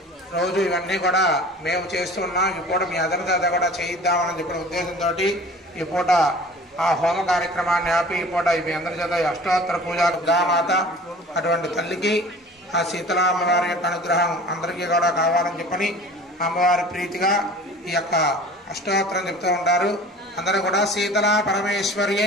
రోజు ఇవన్నీ కూడా మేము చేస్తున్నాం. ఈ పూట మీ అందరితో కూడా చేయిద్దామని చెప్పిన ఉద్దేశంతో ఈ పూట ఆ హోమ కార్యక్రమాన్ని ఆపి ఈ పూట మీ అందరి చేత అష్టోత్తర పూజ గామాత అటువంటి తల్లికి ఆ శీతలా అమ్మవారి యొక్క అనుగ్రహం అందరికీ కూడా కావాలని చెప్పని అమ్మవారి ప్రీతిగా ఈ యొక్క అష్టోత్తరం చెప్తూ ఉంటారు. అందరూ కూడా శీతలా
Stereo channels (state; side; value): normal; both; correlation 0.43